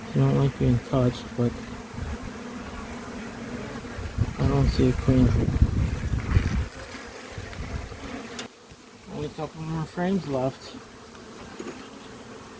You don't like being touched, but I don't see a queen. Only a couple more frames left.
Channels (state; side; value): identical; both; correlation 1.00